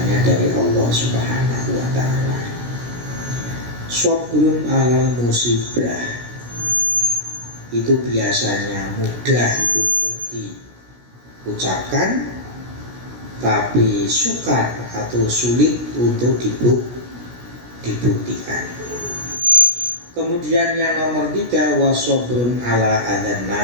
dari Allah Subhanahu wa ta'ala. Sabrun alal musibah itu biasanya mudah untuk diucapkan, tapi sukar atau sulit untuk dibuktikan. Kemudian yang nomor 3, wasobrun ala adan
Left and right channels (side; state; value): left; late; 16 ms